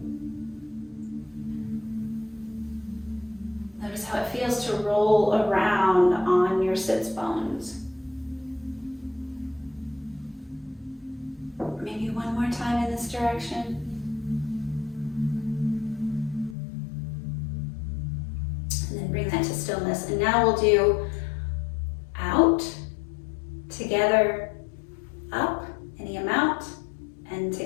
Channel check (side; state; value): right; drops out; at 16.6 s